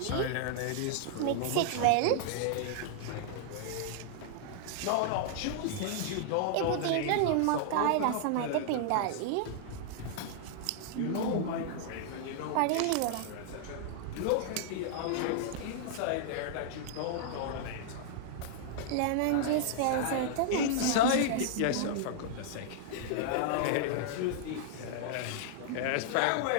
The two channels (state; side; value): different; both; correlation -0.01